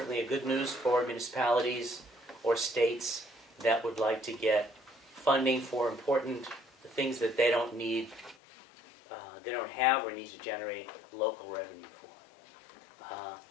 a good news for municipalities or states that would like to get funding for important things that they don't need, they don't have or need to generate local revenue for.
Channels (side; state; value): right; drops out; at 8.3 s